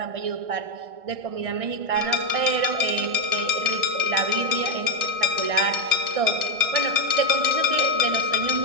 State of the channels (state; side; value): late; left; 1.6 ms